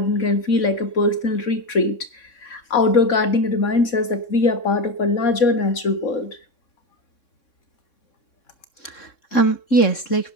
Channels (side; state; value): right; late; 3.6 ms